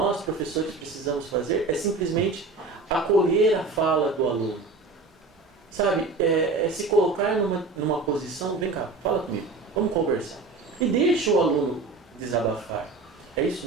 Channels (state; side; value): quieter; left; 3.7 dB